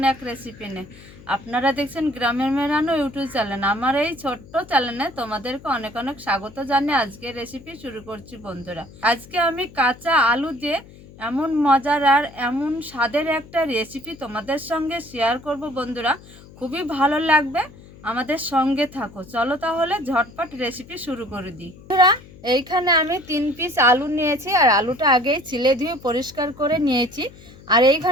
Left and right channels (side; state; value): left; noise; hum, 21 dB below the sound